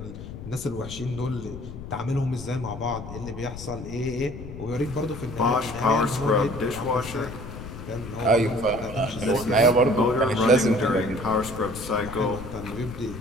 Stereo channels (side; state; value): left; noise; rumble, 11 dB below the sound